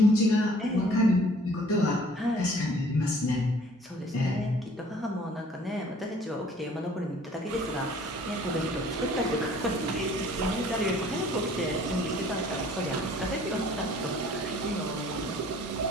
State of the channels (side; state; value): both; normal; correlation 0.54